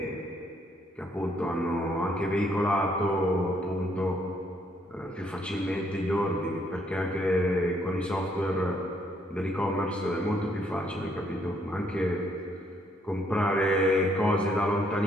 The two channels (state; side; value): normal; both; correlation 0.70